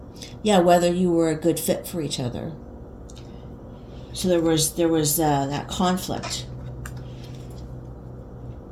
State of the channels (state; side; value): identical; both; correlation 1.00